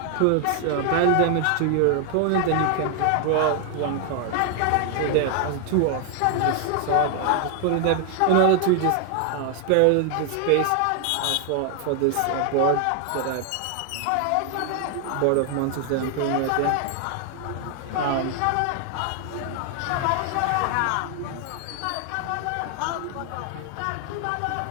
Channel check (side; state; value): both; different; correlation 0.00